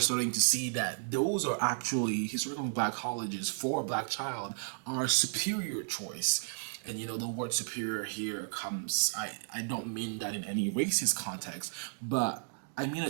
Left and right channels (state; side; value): silent; left; digital silence